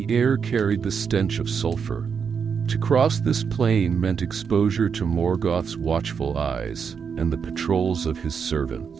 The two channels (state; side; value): quieter; left; 6.5 dB